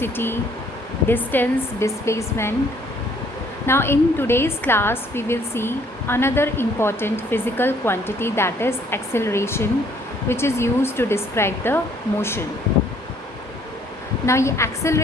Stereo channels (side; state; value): both; normal; correlation 0.62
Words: distance, displacement. Now in today's class we will see another important physical quantity, that is acceleration, which is used to describe the motion. Now ये